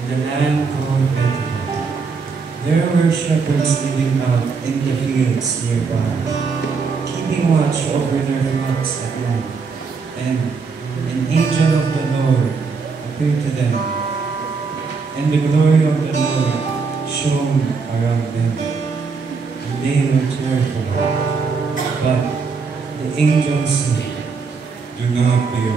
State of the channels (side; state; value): left; quieter; 5.0 dB